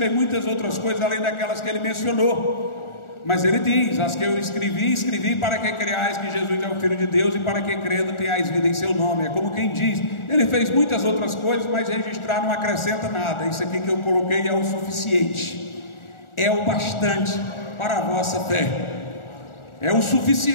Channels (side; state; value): right; late; 1.4 ms